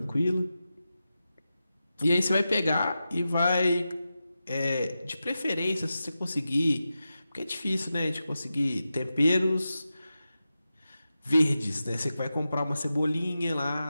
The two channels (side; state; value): both; inverted; correlation -0.92